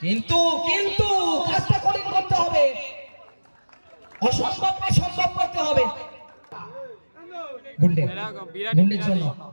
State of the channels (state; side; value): inverted; both; correlation -1.00